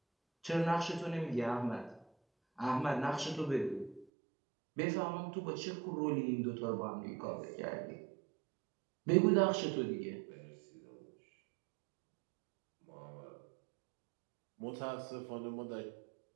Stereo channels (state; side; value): drops out; left; at 4.0 s